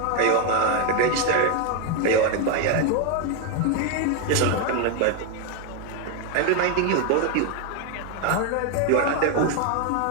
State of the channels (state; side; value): different; both; correlation 0.01